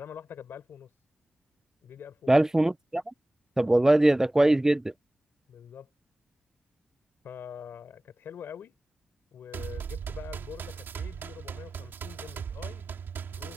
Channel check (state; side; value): normal; both; correlation 0.98